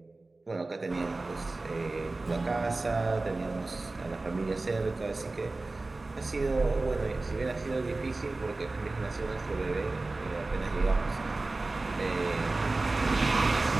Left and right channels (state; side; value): quieter; left; 3.2 dB